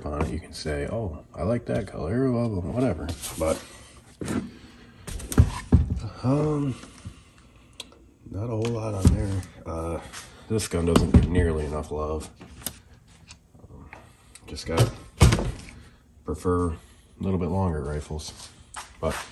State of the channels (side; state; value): both; identical; correlation 1.00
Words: on it, you can say, oh, I like that color, well, whatever. But not a whole lot on there. This gun doesn't get nearly enough love. Just got prefer a little bit longer rifles. But